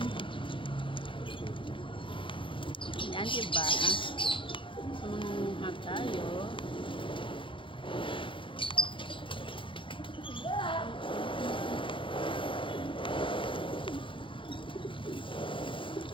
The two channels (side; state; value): right; late; 0.25 ms